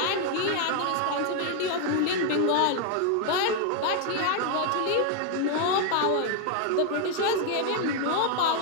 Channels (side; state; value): both; different; correlation 0.00